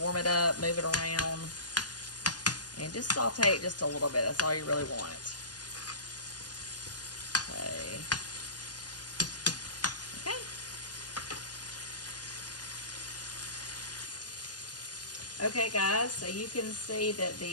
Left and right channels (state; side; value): late; right; 0.70 ms